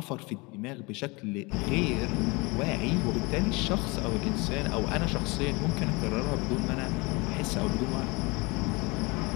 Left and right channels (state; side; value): quieter; right; 26.3 dB